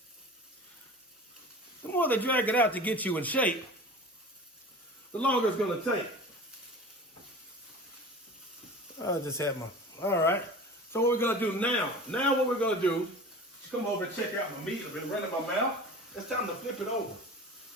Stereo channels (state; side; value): normal; both; correlation 0.37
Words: the longer it's going to take. I just had all right. So what we're going to do now what we're going to do is come over and check out my meat. I've been running my mouth. It's time to flip it over.